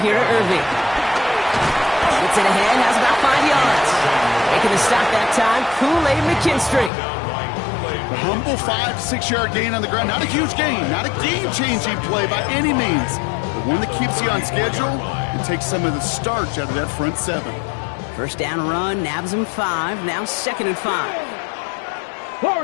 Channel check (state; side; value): drops out; right; at 6.9 s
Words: to Irving. Gets it ahead, has about 5 yards. Making the stop that time, Kool-Aid McKinstry. A humble 5 to 6 yard gain on the ground. Not a huge gain, not a game-changing play by any means. But one that keeps you on schedule and takes some of the starch out of that front 7. 1st down run, nabs him 5, now 2nd and 5.